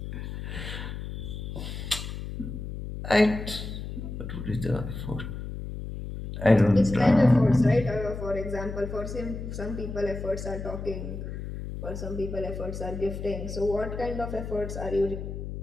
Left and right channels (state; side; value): noise; left; hum, 7 dB below the sound